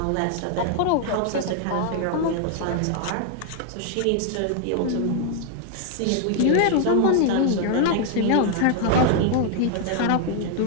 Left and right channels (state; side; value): different; both; correlation 0.00